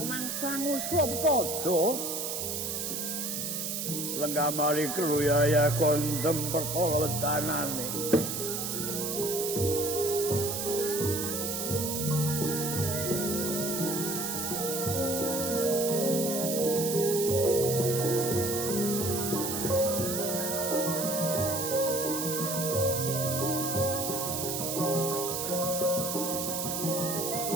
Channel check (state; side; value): noise; right; hiss, 3 dB below the sound